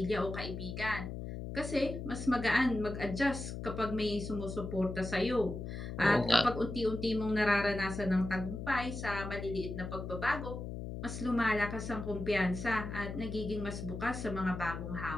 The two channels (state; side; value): noise; left; hum, 7 dB below the sound